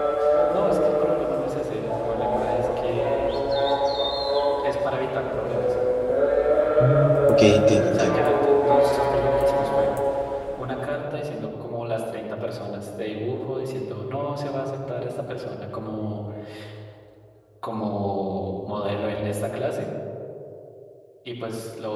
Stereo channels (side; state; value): both; identical; correlation 1.00